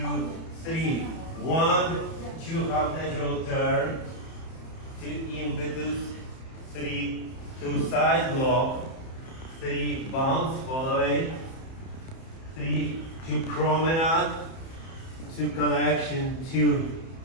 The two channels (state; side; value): late; right; 31 ms